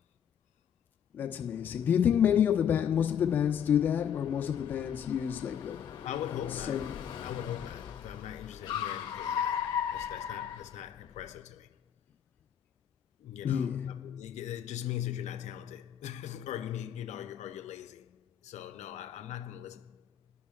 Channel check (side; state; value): right; quieter; 8.8 dB